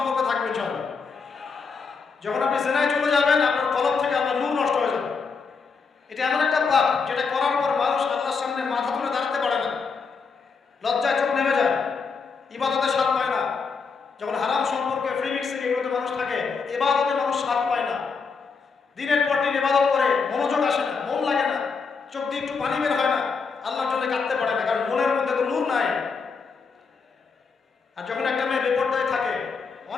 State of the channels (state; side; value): quieter; right; 5.2 dB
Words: থাকবে ইনশাআল্লাহ। যখন আপনি জেনায় চলে যাবেন, আপনার কলব থেকে আল্লাহর নূর নষ্ট হয়ে যাবে। এটা এমন একটা পাপ যেটা করার পর মানুষ আল্লাহর সামনে মাথা তুলে দাঁড়াতে পারে না, লজ্জায় চোখ নেমে যায়, ইবাদতে স্বাদ পায় না। যখন হারাম সম্পর্কে, ফ্রি মিক্সিং, এগুলোতে মানুষ থাকে, ইবাদতে মানুষ স্বাদ পায় না। দিনের পর দিন ইবাদত করে মনোযোগ আসে না, মন লাগে না, চোখ দিয়ে একটু পানি বের হয় না, আল্লাহর জন্য কাঁদতে পারে না, কারণ মনের মধ্যে তো নূর নাই। আর যখন একটা মেয়ে বেপরদায় থাকে,